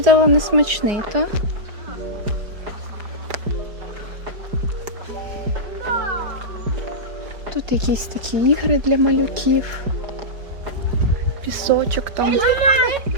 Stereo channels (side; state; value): left; late; 4.8 ms